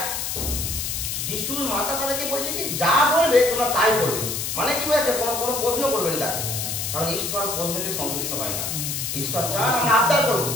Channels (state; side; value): noise; left; hiss, 3 dB below the sound